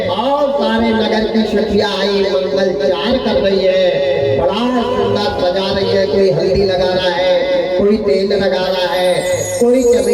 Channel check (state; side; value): noise; left; hum, 26 dB below the sound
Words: और सारे नगर की सखियां आई मंगलचार कर रही है। बड़ा सुंदर सजा रही है। कोई हल्दी लगा रहा है, कोई तेल लगा रहा है, कोई